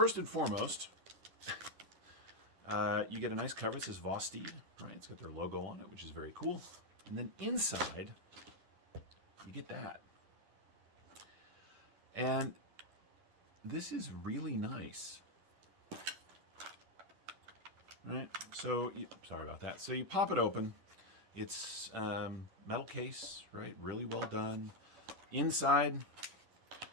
and foremost, you get a nice cover. It says Vosteed, right? It's got their logo on it, which is very cool. And then inside, you get that. And this is really nice. Right, so sorry about that. So you pop it open. It's metal case, right? Really well done. Inside,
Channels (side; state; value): left; late; 10 ms